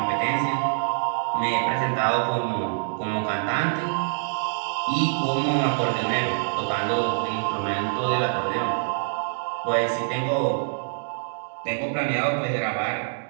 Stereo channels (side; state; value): left; silent; 59 dB below the other